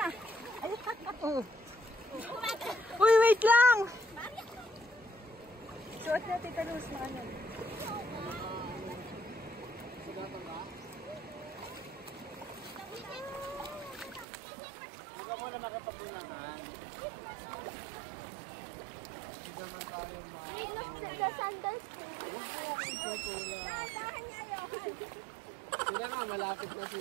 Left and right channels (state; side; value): drops out; left; at 14.2 s